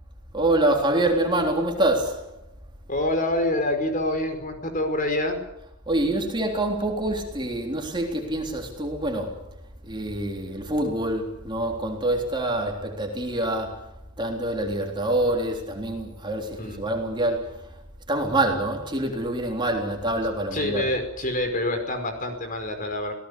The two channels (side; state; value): both; normal; correlation 0.21